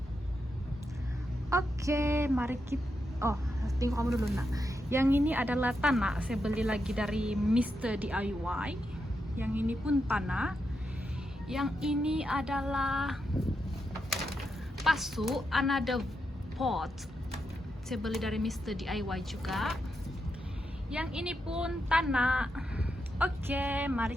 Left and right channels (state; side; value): normal; both; correlation 0.85